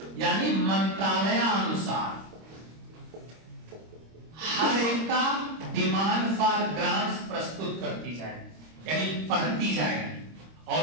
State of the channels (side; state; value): left; late; 26 ms